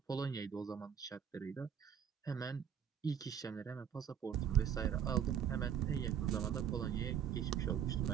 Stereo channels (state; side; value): quieter; left; 8.6 dB